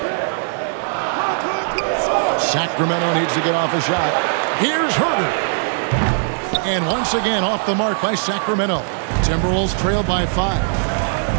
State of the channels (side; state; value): left; silent; 66 dB below the other